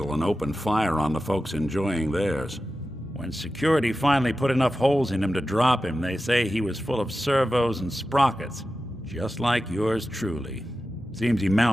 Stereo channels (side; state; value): both; normal; correlation 0.93